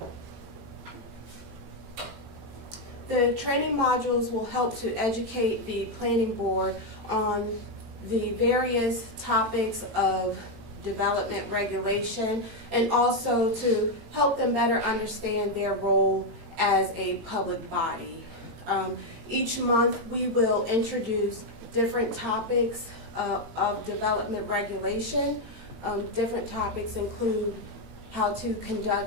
The training modules will help to educate the Planning Board on the various topics of development regulation and also to help them better understand their role as a public body. Each month we will introduce different topics of development regulation. Different topics include how to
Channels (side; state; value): left; late; 18 ms